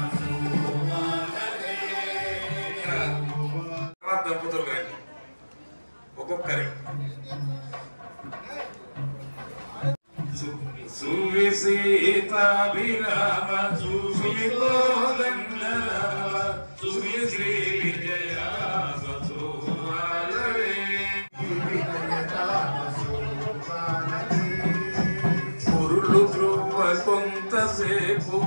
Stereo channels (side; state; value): both; inverted; correlation -1.00